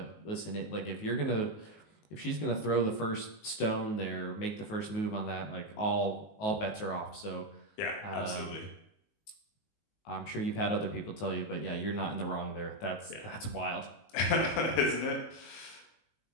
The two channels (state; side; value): late; right; 19 ms